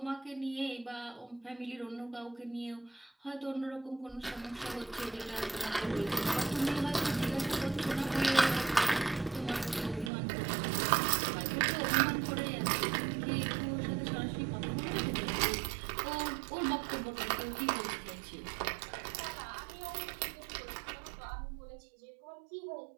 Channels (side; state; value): left; drops out; at 10.1 s